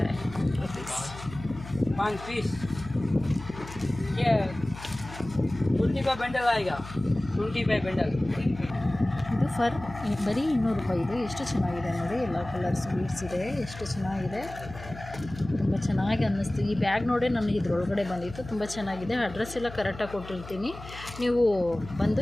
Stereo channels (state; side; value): noise; left; hum, 14 dB below the sound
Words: rupees. 5 पीस ये 20 का बंडल आएगा. 20 बाय बंडल. ಇದು ಫರ್ ಬರೀ 200 ರೂಪಾಯಿ. ಇದು ಎಷ್ಟು ಚೆನ್ನಾಗಿದೆ ನೋಡಿ. ಎಲ್ಲ ಕಲರ್ಸ್ ಬೀಡ್ಸ್ ಇದೆ. ಎಷ್ಟು ಚೆನ್ನಾಗಿದೆ. ತುಂಬ ಚೆನ್ನಾಗಿ ಅನ್ನಿಸ್ತು. ಈ ಬ್ಯಾಗ್ ನೋಡಿ ನನಗೆ ಇದ್ರೊಳಗಡೆ ಬಂದಿತ್ತು. ತುಂಬ ಚೆನ್ನಾಗಿದೆ. ಅಡ್ರೆಸ್ ಎಲ್ಲ ಕರೆಕ್ಟಾಗಿ ಕೊಟ್ಟಿರ್ತೀನಿ. ನೀವು ಬಂದು